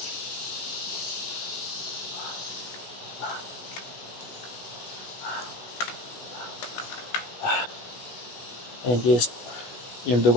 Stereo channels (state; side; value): late; right; 16 ms